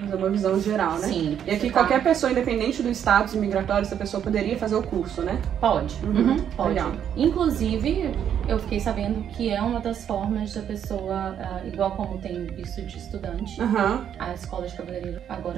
é uma visão geral, né? Sim. E aqui qualquer pessoa, independente do status migratório, essa pessoa poderia fazer o curso, né? Pode. Pode. Legal. Inclusive, eu fiquei sabendo que é uma das formas da pessoa, igual como tem visto de estudante, a escola de cabeleireiro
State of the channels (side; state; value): left; quieter; 9.2 dB